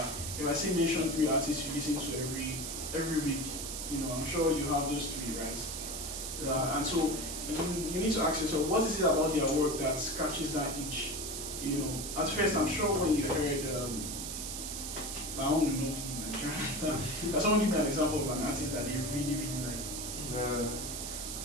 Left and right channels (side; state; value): right; noise; hiss, 5 dB below the sound